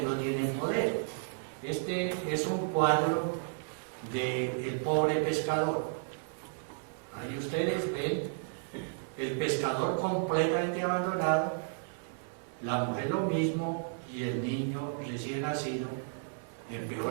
no tienen poder. Este es un cuadro del pobre pescador. Ahí ustedes ven el pescador completamente abandonado, la mujer lo mismo y el niño recién nacido en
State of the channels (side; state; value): left; silent; digital silence